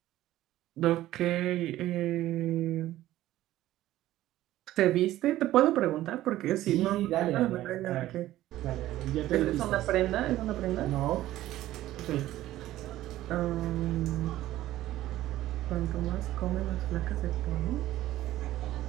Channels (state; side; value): quieter; left; 14.7 dB